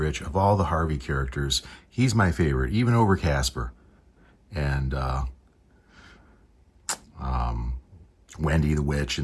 Of all the Harvey characters, he's my favorite, even over Casper. And Wendy the Witch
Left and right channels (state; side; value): identical; both; correlation 1.00